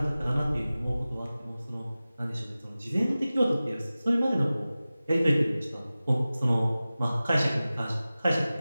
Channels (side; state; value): both; inverted; correlation -0.96